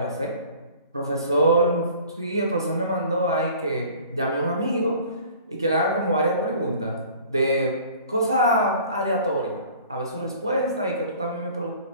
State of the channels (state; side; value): inverted; both; correlation -0.48